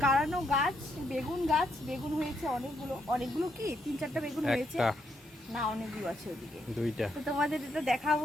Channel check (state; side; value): normal; both; correlation 0.77